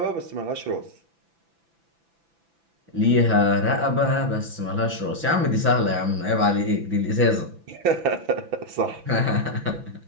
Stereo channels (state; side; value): late; left; 6.0 ms